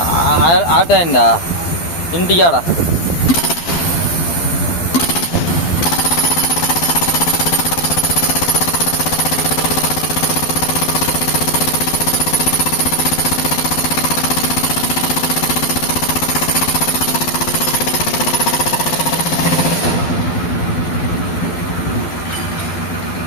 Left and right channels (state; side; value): late; right; 12 ms